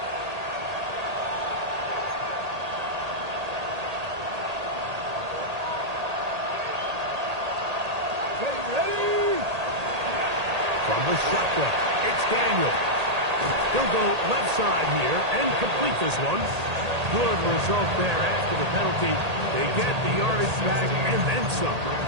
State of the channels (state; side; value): late; left; 1.8 ms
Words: From the shotgun. It's Daniel. He'll go left side here and complete this one. Good result there after the penalty. They get the yardage back and then some.